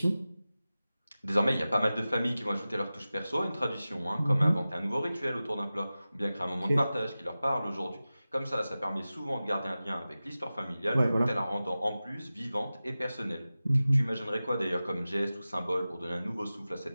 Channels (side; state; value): both; inverted; correlation -0.96